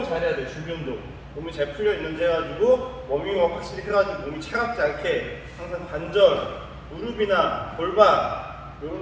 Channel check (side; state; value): both; identical; correlation 1.00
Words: 잘 해야 돼요. 준비 운동. 몸이 잘 풀려 있는지 해가지고 워밍업 확실히 해가지고 몸이 차갑지 않게 항상 관절, 무릎이나 골반